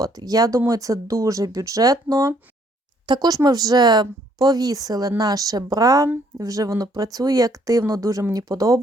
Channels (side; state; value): both; normal; correlation 0.66